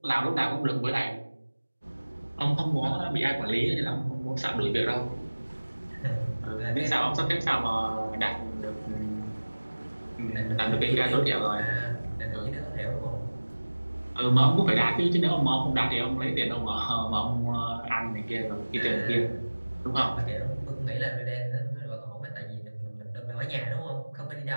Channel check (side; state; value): both; inverted; correlation -1.00